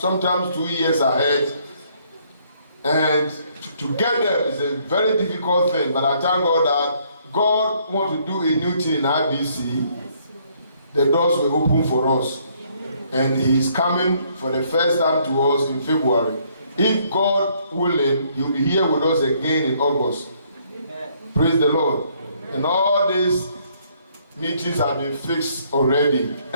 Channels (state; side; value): inverted; both; correlation -0.67